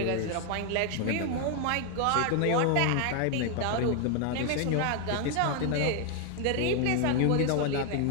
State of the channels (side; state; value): both; different; correlation 0.01